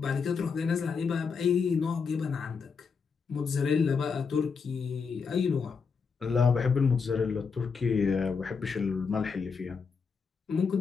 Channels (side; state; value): right; quieter; 5.5 dB